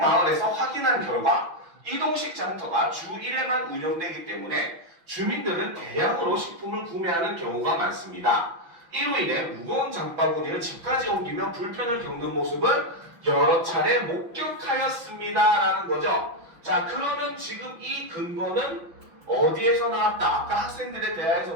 확인한 결과 이동식 장터가 주 1회만 운영되기 때문에 주민들은 대량으로 식품을 구매하는 경우가 많습니다. 이로 인해 무거운 장바구니를 집까지 옮기며 불편을 겪는 모습을 여러 차례 목격하였습니다 라는 거죠. 자, 그러면 지금 이 근거는 어디에서 나왔다? 아까 학생들의 대화에서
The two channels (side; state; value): left; late; 6.0 ms